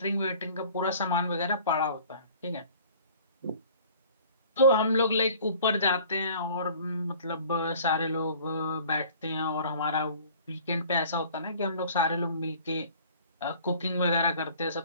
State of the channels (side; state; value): both; inverted; correlation -0.49